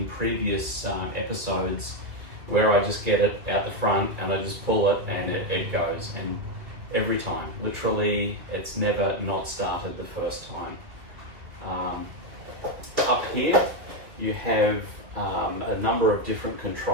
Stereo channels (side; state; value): left; late; 2.2 ms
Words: previous episodes where I just get it out the front and I just pull it and it goes. And every time, literally, it's never not started the first time. Up here, you have a number of different